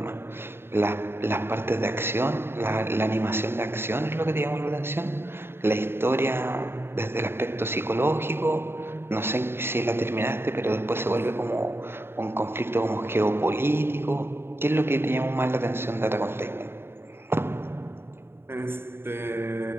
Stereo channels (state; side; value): late; left; 0.11 ms